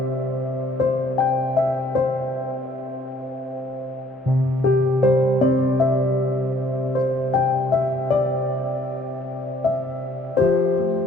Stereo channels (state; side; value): normal; both; correlation 0.61